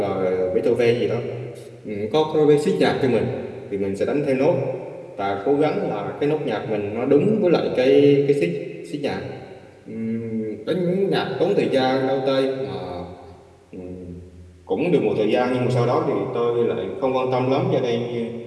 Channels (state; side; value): identical; both; correlation 1.00